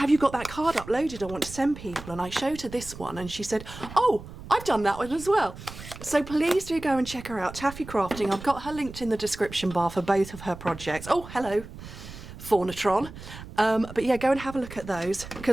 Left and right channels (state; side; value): noise; right; rumble, 14 dB below the sound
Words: you got that card uploaded? I want to send people. And I showed her this one and she said, oh, I've done that one as well. So please do go and check her out, Taffy Crafting. I've got her linked in the description bar for both of her projects. Oh, hello, Faunatron. But yeah, go and have a look at those,